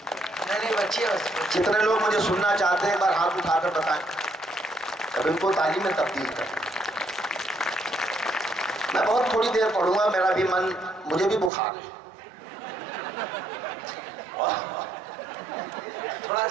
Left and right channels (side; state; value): left; drops out; at 11.5 s